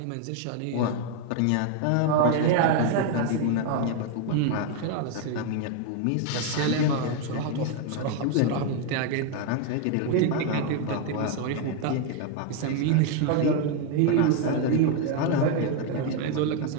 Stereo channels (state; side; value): different; both; correlation 0.01